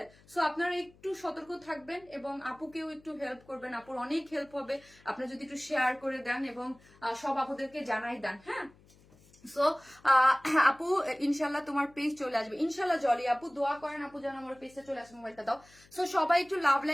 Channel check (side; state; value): left; noise; hum, 27 dB below the sound